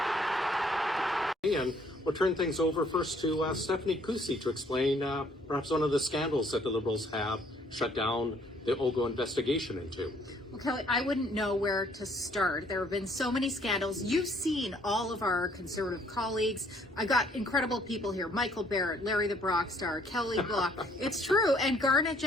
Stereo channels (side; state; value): both; normal; correlation 0.63